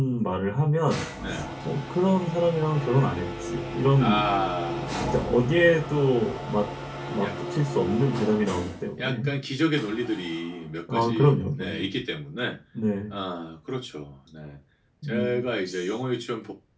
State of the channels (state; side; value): identical; both; correlation 1.00